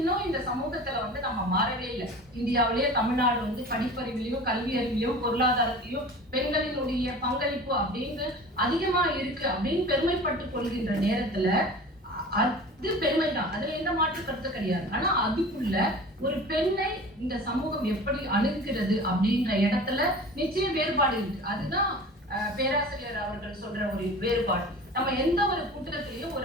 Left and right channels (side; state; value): both; normal; correlation 0.39